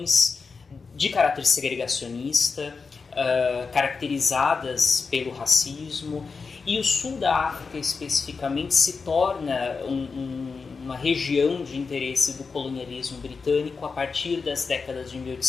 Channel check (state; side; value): quieter; right; 4.8 dB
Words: de caráter segregacionista, caracterizadas pelo racismo. E o sul da África, especificamente, se torna uma região de interesse do colonialismo britânico a partir das décadas de